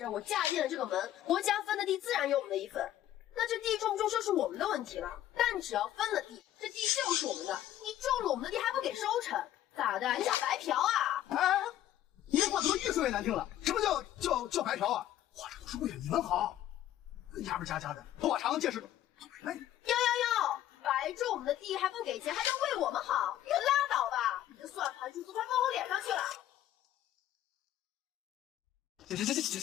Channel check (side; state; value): right; quieter; 12.6 dB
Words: 儿，我嫁进了这个门，国家分的地自然有我们的一份。那这地种不种就是我们的问题了。但只要分了地，这地就是我们的。你种了我们的地还不给收成，咋的？你想白嫖啊？你这话怎么越说越难听了？什么叫白嫖啊？我这都是为了你们好。牙不加的，头发长见识短。哟，白种我们的地还不给钱，还能为我们好？你可拉倒吧！你这算盘珠子快放我脸上去了。